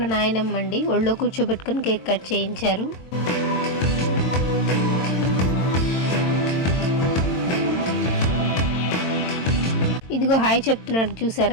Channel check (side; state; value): right; late; 22 ms